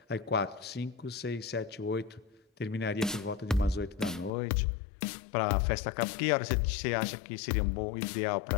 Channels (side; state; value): right; drops out; at 4.3 s